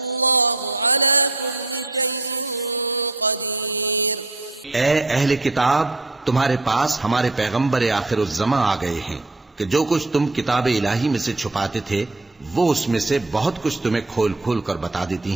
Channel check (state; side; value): quieter; left; 3.0 dB